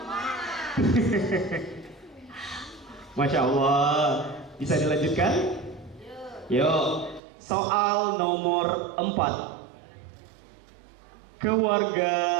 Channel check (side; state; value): left; drops out; at 7.2 s